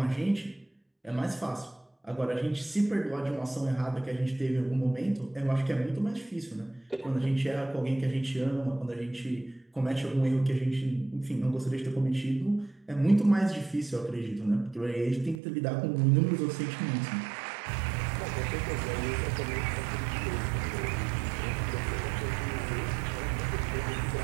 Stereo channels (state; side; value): drops out; left; at 15.4 s